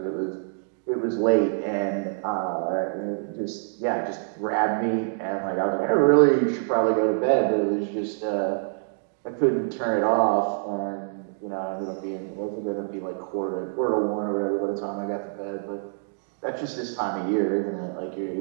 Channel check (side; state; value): left; silent; digital silence